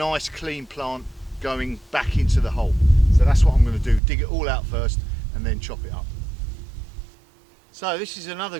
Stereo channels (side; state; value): left; drops out; at 4.0 s